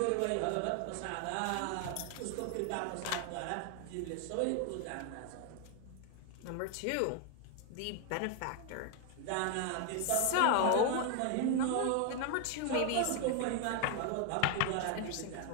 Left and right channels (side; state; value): both; different; correlation 0.00